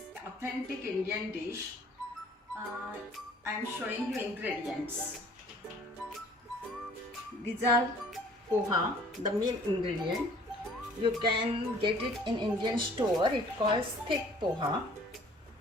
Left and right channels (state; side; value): normal; both; correlation 0.54